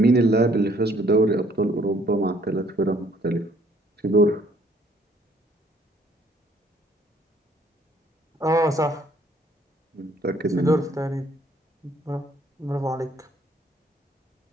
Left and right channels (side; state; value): both; normal; correlation 0.63